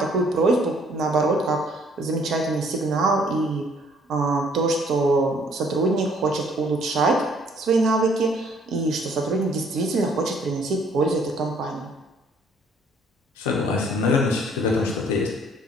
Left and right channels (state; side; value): normal; both; correlation 0.62